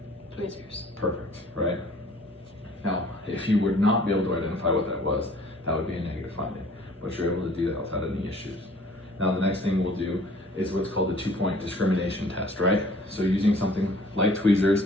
Tweezers. Perfect, right? Now, if you would not be able to identify what that was, that would be a negative finding, but you're able to do that without any issues. Now the next thing we'll do is what's called the 2-point discrimination test, right? So using something like tweezers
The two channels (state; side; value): normal; both; correlation 0.54